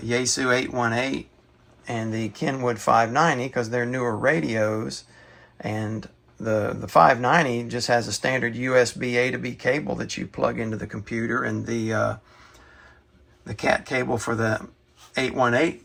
818 and the Kenwood 590 because they're newer radios, and the 590 just has a standard USB A to B cable that you plug into the computer, and the cat cable for the 818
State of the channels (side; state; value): both; identical; correlation 1.00